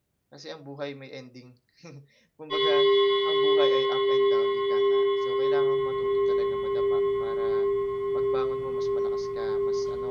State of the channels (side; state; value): both; identical; correlation 1.00